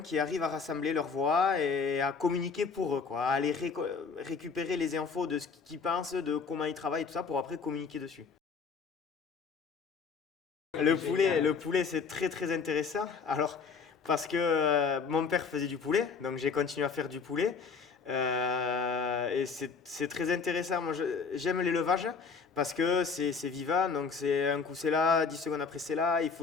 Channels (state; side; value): quieter; right; 5.4 dB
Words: qui arrive à rassembler leurs voix et à communiquer pour eux, quoi, à aller récupérer les infos de ce qu'ils pensent, de comment ils travaillent, tout ça, pour après communiquer dessus. Le poulet, c'est très très intéressant. Alors, parce que mon père faisait du poulet, donc j'ai continué à faire du poulet. Et c'est très intéressant. J'aime l'élevage parce que c'est vivant. Donc, c'est un coup c'est là, 10 secondes après c'est là. Il